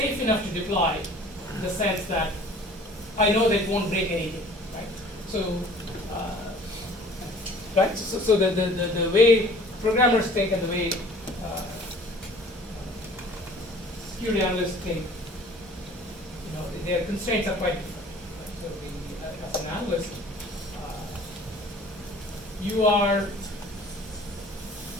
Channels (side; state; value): both; normal; correlation 0.49